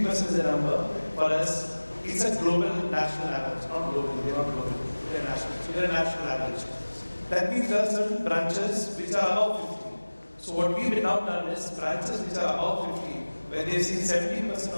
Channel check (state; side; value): inverted; both; correlation -1.00